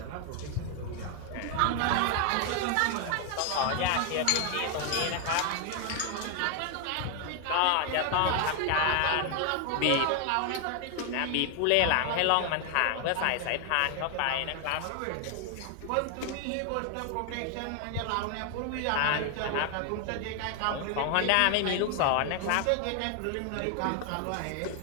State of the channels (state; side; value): different; both; correlation 0.00